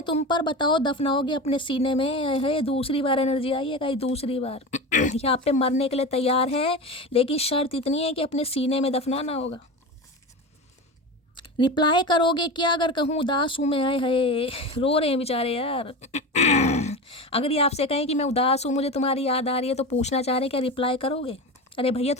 तुम पर, बताओ दफनाओगे अपने सीने में। है दूसरी बार एनर्जी आई है कहीं, दूसरी बार यहाँ पे मरने के लिए तैयार है, लेकिन शर्त इतनी है कि अपने सीने में दफनाना होगा। रिप्लाई करोगे क्या अगर कहूँ उदास हूँ मैं? है रो रहे हैं बेचारे यार अगर ये आपसे कहें कि मैं उदास हूँ, मुझे तुम्हारी याद आ रही है, तो पूछना चाह रहे हैं क्या रिप्लाई करोगे? अरे भैया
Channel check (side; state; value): both; normal; correlation 0.26